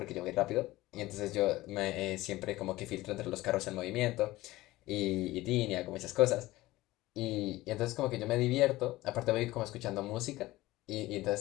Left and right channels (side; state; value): right; quieter; 17.9 dB